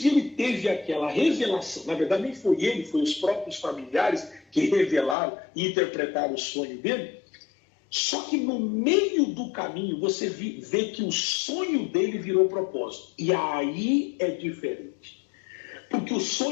e ele teve aquela revelação. Na verdade, nem foi ele, foi os próprios familiares que revelaram e interpretaram o sonho dele. Só que no meio do caminho você vê que o sonho dele virou propósito. E aí é diferente. Porque o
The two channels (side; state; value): right; drops out; at 5.2 s